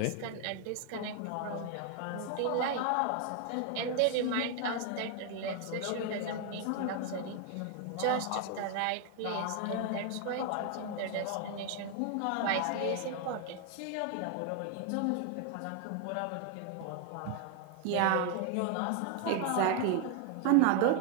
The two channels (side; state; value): both; different; correlation 0.00